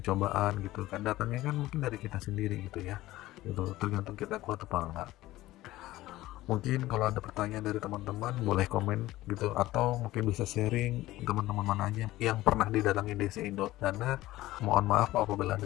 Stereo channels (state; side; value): quieter; right; 16.6 dB